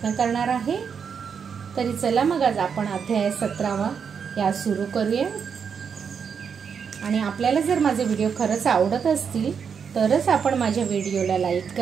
करणार आहे। तरी चला मग आज आपण अध्याय 17वा या सुरू करूया। आणि आपल्याला जर माझे व्हिडिओ खरंच आवडत असतील तरच आपण माझ्या व्हिडिओला लाईक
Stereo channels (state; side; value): quieter; left; 6.7 dB